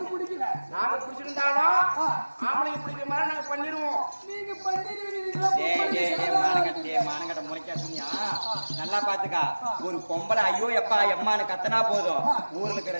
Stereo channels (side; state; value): both; inverted; correlation -1.00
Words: பிடிக்கல. நாங்க பிடிச்சிருந்தாலும் ஆம்பளைங்க பிடிக்கிற மாதிரி நாங்க பண்ணிடுவோம். நீங்க பண்ணிடுவீங்களா? மானங்கட்ட முறைக்காதீங்க. நல்லா பாத்துக்கா, ஒரு பொம்பளை ஐயோ எப்பா எம்மான்னு கத்தனா போதும், ஊர்ல இருக்கிற